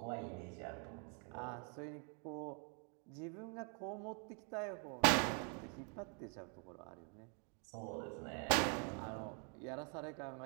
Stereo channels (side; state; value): left; quieter; 39.2 dB